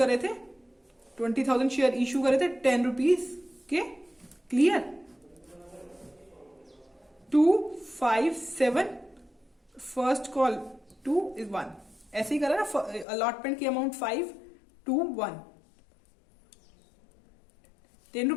थे, 20,000 शेयर इशू करे थे 10 रुपीज के। क्लियर? 2, 5, 7, फर्स्ट कॉल 2 is 1, ऐसे ही करा ना, अलॉटमेंट की अमाउंट 5, 2, 1, 10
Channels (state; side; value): drops out; right; at 13.1 s